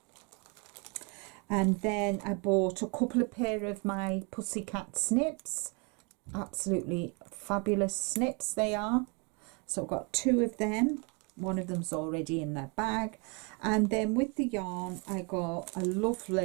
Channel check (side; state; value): left; quieter; 33.1 dB